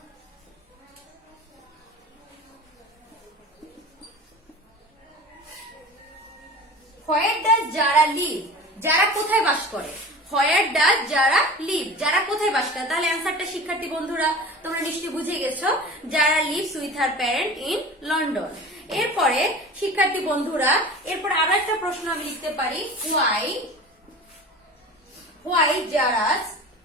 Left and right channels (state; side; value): normal; both; correlation 0.36